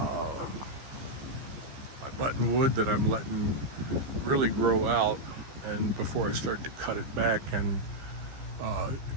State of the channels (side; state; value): left; late; 15 ms